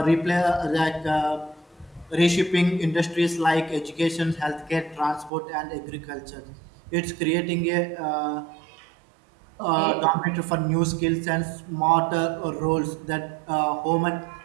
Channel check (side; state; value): left; drops out; at 5.3 s